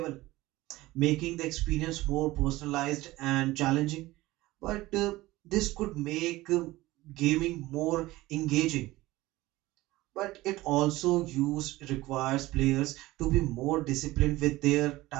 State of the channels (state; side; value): quieter; left; 18.4 dB